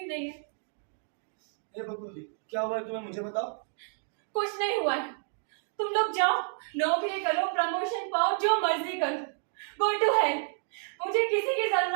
नहीं है। ये बकुल दी, क्या हुआ है तुम्हें? मुझे बताओ। कुछ नहीं हुआ है। तुम लोग जाओ, नौकरी करो, प्रमोशन पाओ, जो मर्जी करो। Go to hell. मुझे किसी की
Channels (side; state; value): left; silent; 58 dB below the other